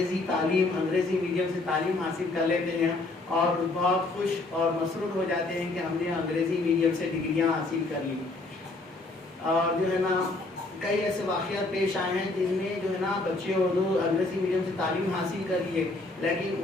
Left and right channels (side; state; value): right; quieter; 3.1 dB